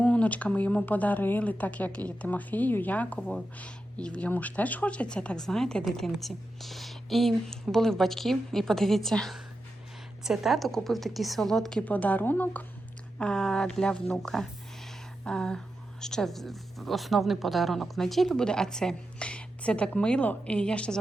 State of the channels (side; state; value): both; normal; correlation 0.89